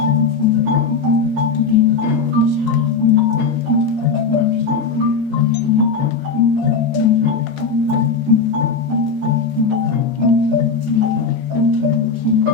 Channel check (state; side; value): quieter; right; 4.9 dB